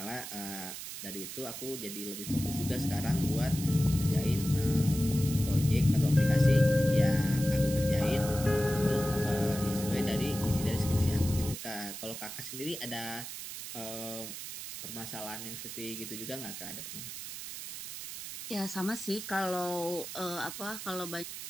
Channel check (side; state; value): right; noise; hiss, 9 dB below the sound